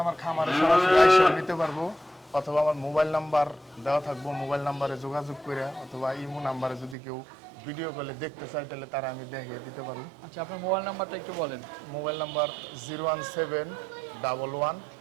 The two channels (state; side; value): drops out; left; at 7.0 s